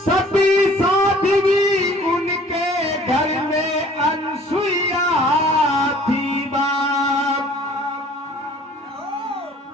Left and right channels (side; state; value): both; normal; correlation 0.52